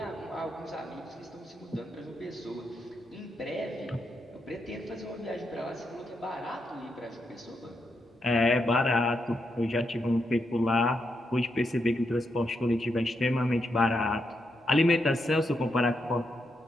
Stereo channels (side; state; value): both; normal; correlation 0.82